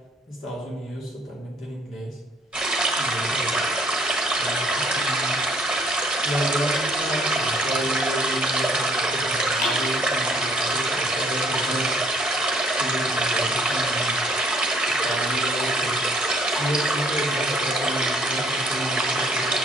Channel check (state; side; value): normal; both; correlation 0.62